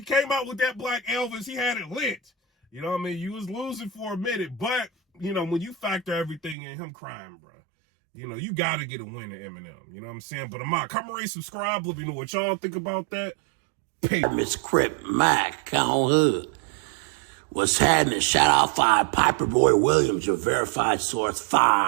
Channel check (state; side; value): drops out; left; at 6.6 s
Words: came out with that Black Elvis. He had it lit. You know what I mean? You was losing for a minute. But, when you factor everything in, him crying, bro, you got to get a win at Eminem. You know what I'm saying? But come and rate, subscribe. Let me know what y'all think about that. Peace. Miss Crip Mac on hood. What's happening? Shout out 5 PIPERBOY Williams, your verified source